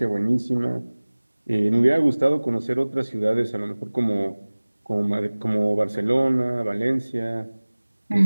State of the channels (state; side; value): inverted; both; correlation -1.00